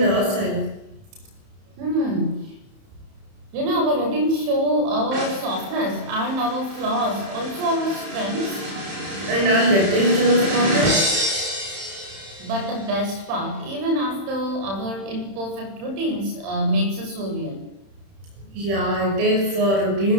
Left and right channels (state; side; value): late; left; 31 ms